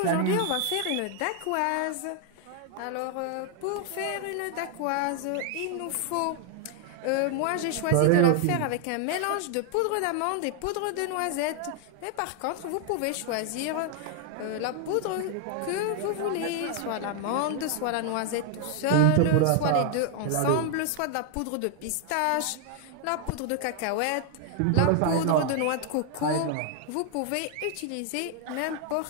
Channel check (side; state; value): both; different; correlation 0.00